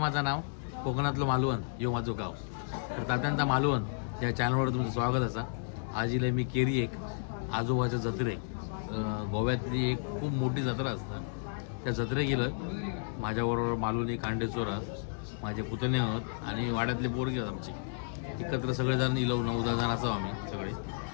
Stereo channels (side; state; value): right; silent; 56 dB below the other